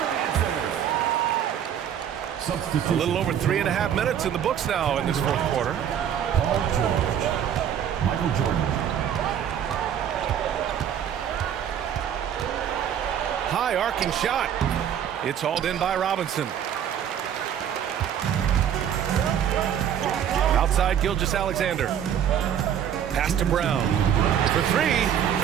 Substitution. A little over 3.5 minutes in the books now in this fourth quarter. Paul George. Michael Jordan. High arcing shot. It's hauled in by Robinson. Outside Gilgeous-Alexander. Pass to Brown. For three.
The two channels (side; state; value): left; quieter; 9.3 dB